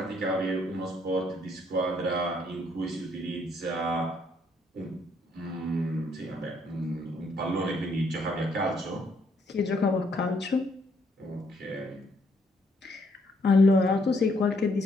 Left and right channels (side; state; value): both; normal; correlation 0.70